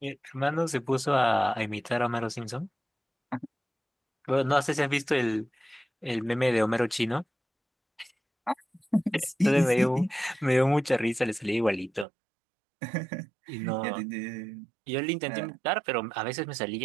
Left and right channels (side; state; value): left; drops out; at 12.1 s